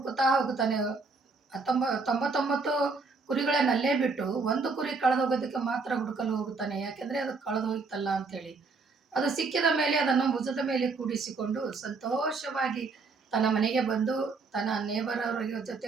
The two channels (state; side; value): quieter; left; 4.3 dB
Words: ಹೋಗುತ್ತಾನೆ. 99 ಕುರಿಗಳನ್ನಲ್ಲೇ ಬಿಟ್ಟು ಒಂದು ಕುರಿ ಕಳೆದು ಹೋಗೋದಕ್ಕೆ ಮಾತ್ರ ಹುಡುಕಲು ಹೋಗುತ್ತಾನೆ. ಯಾಕೆಂದ್ರೆ ಅದು ಕಳೆದು ಹೋಯ್ತಲ್ಲ ಅಂತೇಳಿ. ಅದು ಸಿಕ್ಕಿದ ಮೇಲೆ ಅದನ್ನು ಭುಜದ ಮೇಲೆ ಕೂಡಿಸಿಕೊಂಡು ಸಂತೋಷವಾಗಿ ತನ್ನ ಮನೆಗೆ ಬಂದು ತನ್ನ ನೇಬರವರ